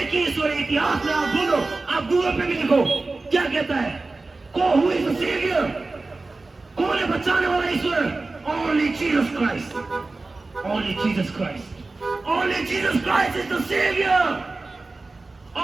ही ईश्वर है। इतिहास में आप बोलो, आप गूगल पे भी लिखो, क्या कहता है? Who is the saviour? कौन है बचाने वाला ईश्वर? Only Jesus Christ. Only Jesus Christ. Only Jesus Christ is the Savior.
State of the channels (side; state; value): left; quieter; 3.4 dB